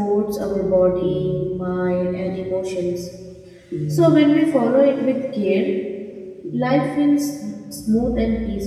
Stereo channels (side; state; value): both; identical; correlation 1.00